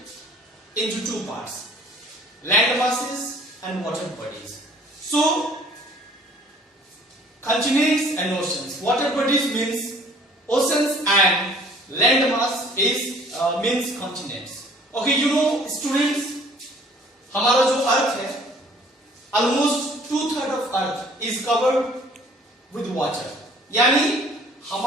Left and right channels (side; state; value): both; normal; correlation 0.54